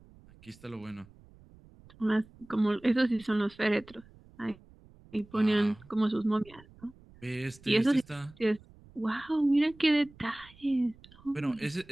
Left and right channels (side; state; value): right; noise; rumble, 25 dB below the sound